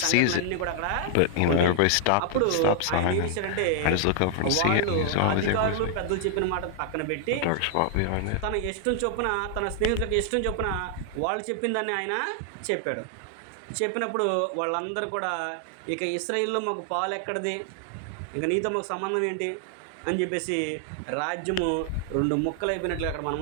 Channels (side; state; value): both; different; correlation 0.00